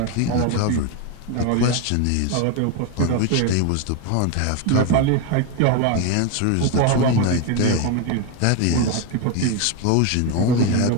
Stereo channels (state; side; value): different; both; correlation 0.02